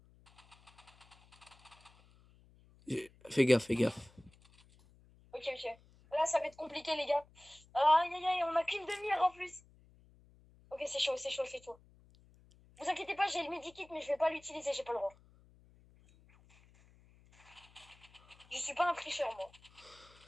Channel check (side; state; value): left; noise; hum, 27 dB below the sound